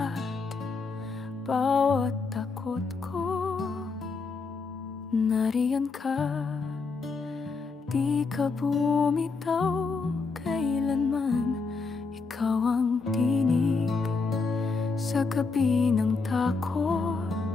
bawat takot ko, nariyan ka. Di ka bumitaw kailanman, ikaw ang tinig sa gabi ng takot,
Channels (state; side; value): quieter; right; 4.4 dB